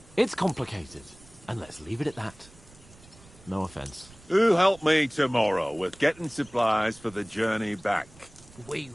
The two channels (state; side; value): noise; right; rumble, 24 dB below the sound